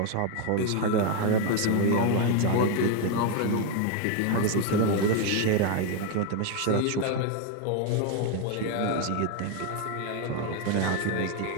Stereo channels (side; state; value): both; different; correlation 0.01